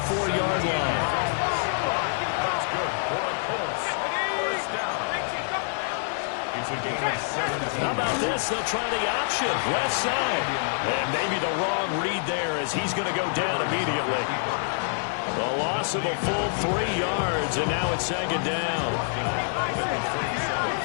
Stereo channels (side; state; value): right; silent; 61 dB below the other